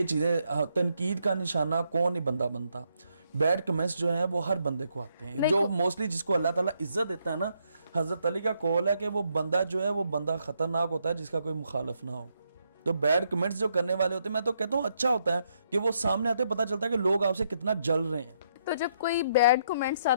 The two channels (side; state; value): both; inverted; correlation -0.75